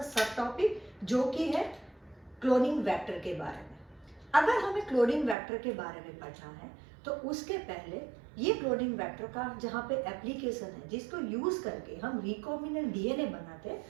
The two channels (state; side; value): drops out; left; at 5.4 s